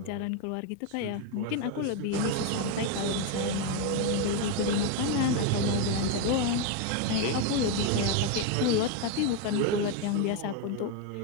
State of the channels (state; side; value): different; both; correlation 0.02